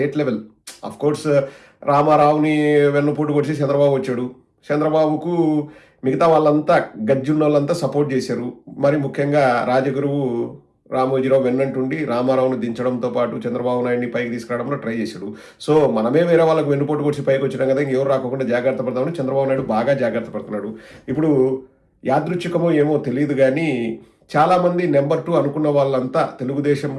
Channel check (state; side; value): identical; both; correlation 1.00